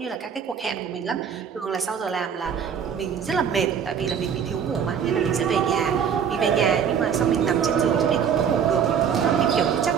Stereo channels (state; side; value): quieter; left; 7.6 dB